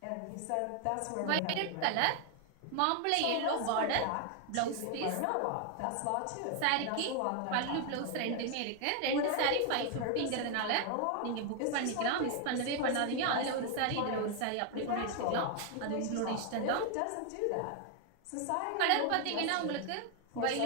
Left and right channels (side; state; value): both; different; correlation 0.00